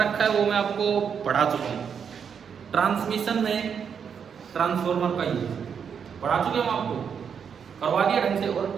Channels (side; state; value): left; quieter; 7.1 dB